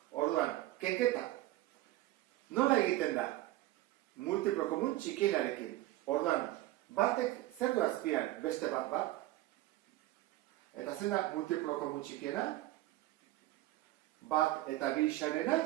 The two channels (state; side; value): quieter; left; 16.3 dB